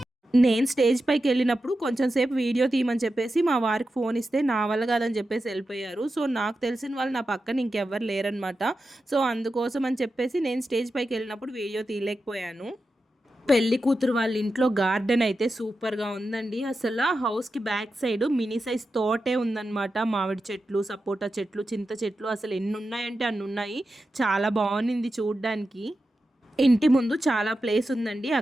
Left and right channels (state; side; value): normal; both; correlation 0.91